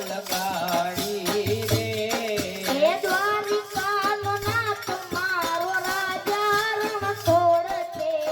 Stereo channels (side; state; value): both; identical; correlation 1.00